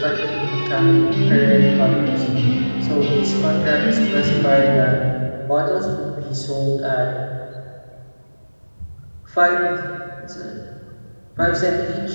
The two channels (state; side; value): inverted; both; correlation -1.00